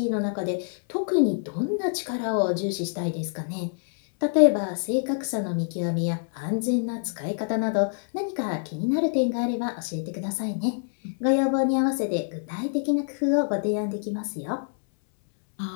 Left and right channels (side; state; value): right; silent; 61 dB below the other